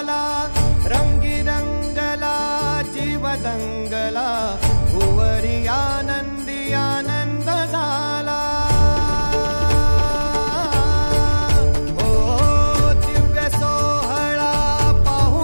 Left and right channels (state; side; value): inverted; both; correlation -1.00